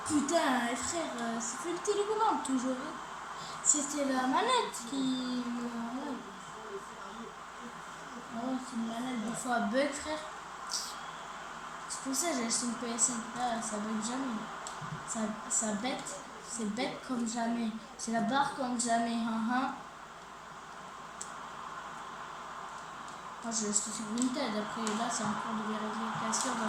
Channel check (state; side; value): identical; both; correlation 1.00